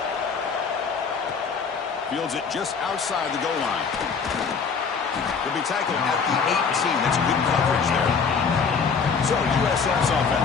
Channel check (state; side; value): quieter; right; 5.7 dB